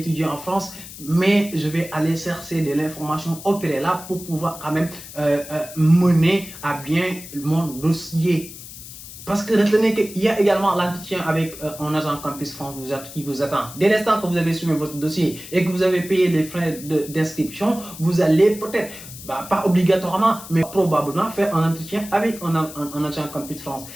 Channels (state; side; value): noise; left; hiss, 14 dB below the sound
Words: en France mais je vais aller chercher de l'information au préalable pour pouvoir quand même mener à bien mon dossier. Parce que retenez qu'il y a également l'entretien avec un agent Campus France qui vous attend. Dès l'instant que vous avez soumis votre dossier et que vous avez payé les frais d'inscription, vous allez peut-être pas obligatoirement, mais probablement faire un entretien avec un agent Campus France.